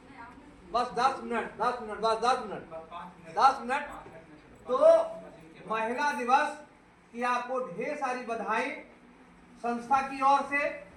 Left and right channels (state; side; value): identical; both; correlation 1.00